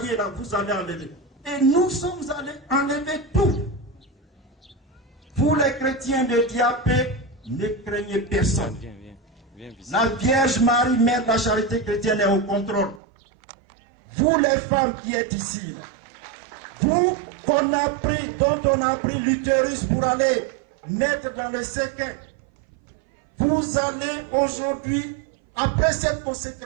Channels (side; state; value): left; drops out; at 13.0 s